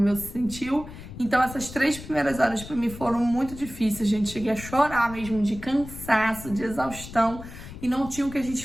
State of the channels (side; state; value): left; noise; rumble, 13 dB below the sound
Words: meu se sentiu. Então essas 3 primeiras horas para mim foram muito difíceis, gente. Cheguei a chorar mesmo de cansaço, de exaustão. E não tinha o que a